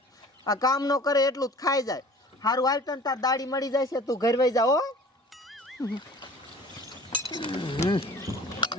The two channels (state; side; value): normal; both; correlation 0.46